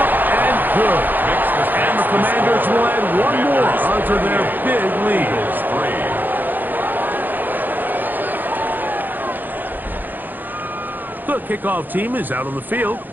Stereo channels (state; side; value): late; left; 0.087 ms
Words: up and good. And the Commanders will add one more onto their big lead. The kickoff team is out on the field,